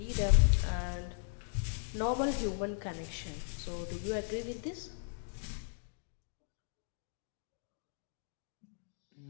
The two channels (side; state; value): right; silent; digital silence